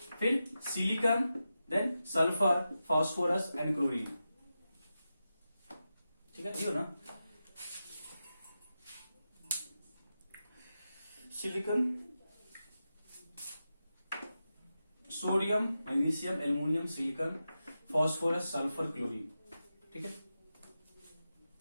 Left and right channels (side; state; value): both; inverted; correlation -0.91